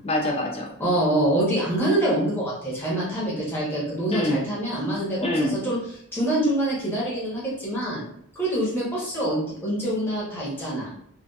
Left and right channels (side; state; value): both; normal; correlation 0.35